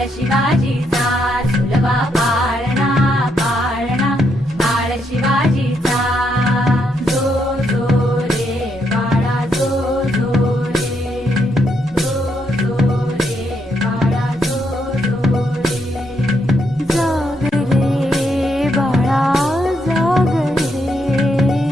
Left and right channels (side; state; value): both; normal; correlation 0.77